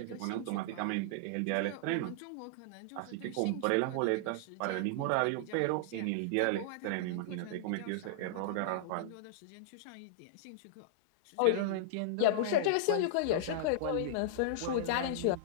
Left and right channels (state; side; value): different; both; correlation -0.01